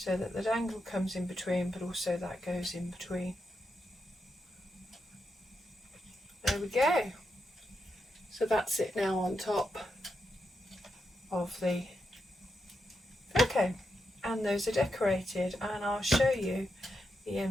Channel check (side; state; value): both; normal; correlation 0.85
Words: that the dangle comes in between, but also that goes in between. There we go. So that's it now on top of the Fircone, and those are decorated, and I'll show you the